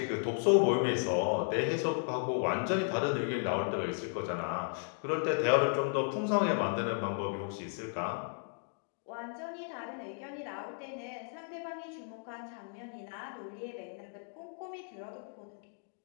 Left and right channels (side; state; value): right; silent; 55 dB below the other